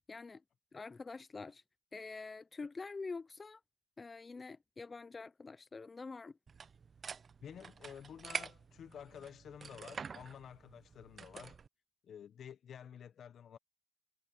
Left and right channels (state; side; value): normal; both; correlation 0.85